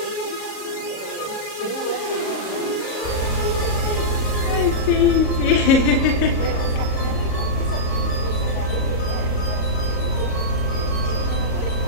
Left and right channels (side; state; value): right; late; 38 ms